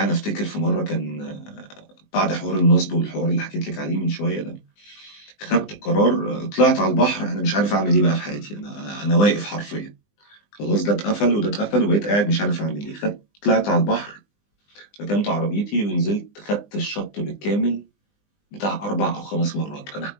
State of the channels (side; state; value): right; late; 20 ms